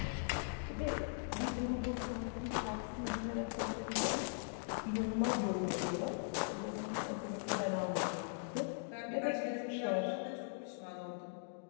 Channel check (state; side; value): silent; right; digital silence